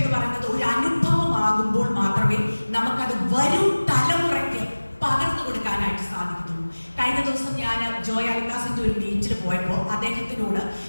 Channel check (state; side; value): inverted; both; correlation -1.00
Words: പറയുന്നത് ഒരു അനുഭവമാകുമ്പോൾ മാത്രമേ നമുക്കത് വരും തലമുറയ്ക്ക് പകർന്നു കൊടുക്കാനായിട്ട് സാധിക്കത്തുള്ളൂ. കഴിഞ്ഞ ദിവസം ഞാൻ ജോയ് അൽക്കാസിന്റെ ഒരു മീറ്റിൽ പോയപ്പോൾ അദ്ദേഹത്തിനോട്